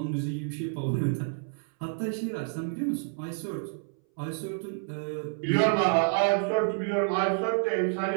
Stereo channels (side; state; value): left; silent; 59 dB below the other